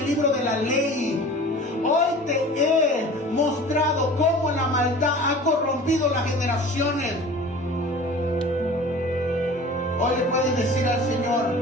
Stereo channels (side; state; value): both; normal; correlation 0.41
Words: libro de la ley. Hoy te he mostrado cómo la maldad ha corrompido las generaciones. Hoy le puedes decir al Señor: